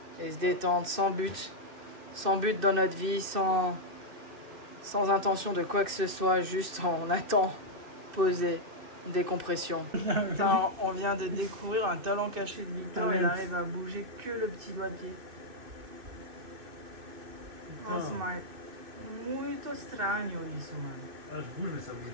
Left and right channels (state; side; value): late; left; 2.6 ms